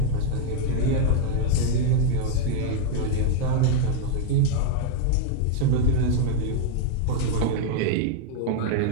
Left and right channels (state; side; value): different; both; correlation 0.00